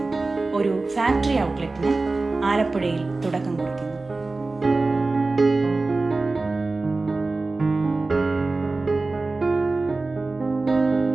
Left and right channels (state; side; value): quieter; left; 3.4 dB